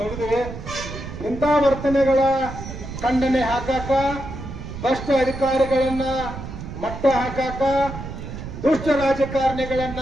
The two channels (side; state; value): right; noise; rumble, 9 dB below the sound